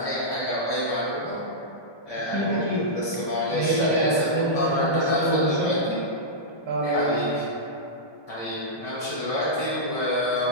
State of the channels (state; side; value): late; right; 1.2 ms